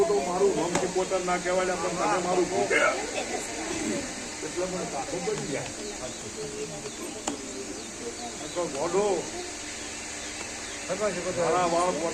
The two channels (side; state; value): both; identical; correlation 1.00